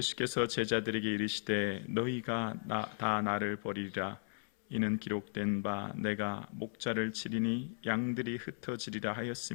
제자들에게 이르시되 너희가 다 나를 버리리라. 이는 기록된 바 내가 목자를 치리니 양들이 흩어지리라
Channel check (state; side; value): silent; right; 54 dB below the other